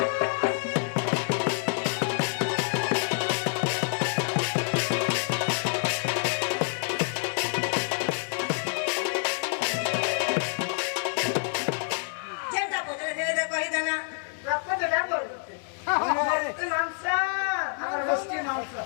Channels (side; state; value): right; silent; 60 dB below the other